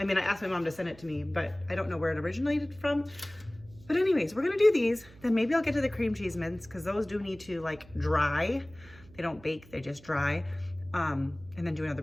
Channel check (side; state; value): right; noise; hum, 23 dB below the sound